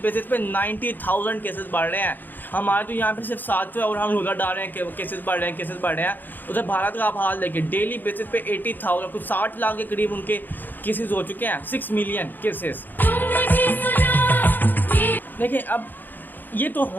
बेसिस पे 90,000 केसेस बढ़ रहे हैं। हमारे तो यहाँ पे सिर्फ 700 है और हम उधर डाल रहे हैं केसेस बढ़ रहे हैं, केसेस बढ़ रहे हैं। उधर भारत का आप हाल देखिए, डेली बेसिस पे 80,000 कुछ 60 लाख के करीब उनके केसेस हो चुके हैं, 6 मिलियन केसेस। देखिए अब ये तो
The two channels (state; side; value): late; right; 0.089 ms